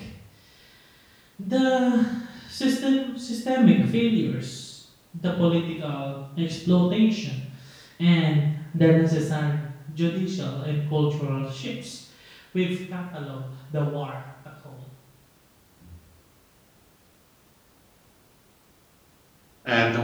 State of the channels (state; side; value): identical; both; correlation 1.00